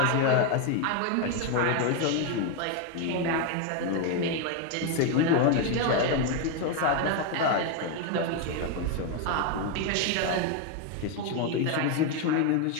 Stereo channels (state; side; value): different; both; correlation 0.02